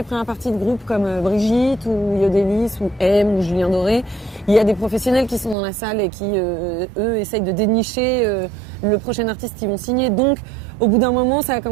premières parties de groupes comme Brigitte ou Yodelis ou M ou Julien Doré, il y a des professionnels qui sont dans la salle et qui, eux, essayent de dénicher le prochain artiste qu'ils vont signer. Donc, au bout d'un moment, ça a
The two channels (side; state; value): left; drops out; at 5.6 s